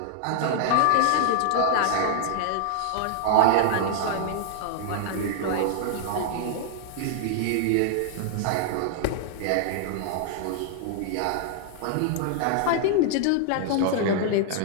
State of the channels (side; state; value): both; different; correlation 0.00